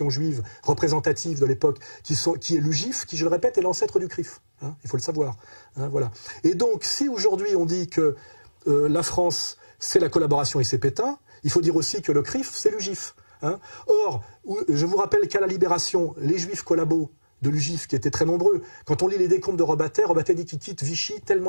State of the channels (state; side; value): inverted; both; correlation -1.00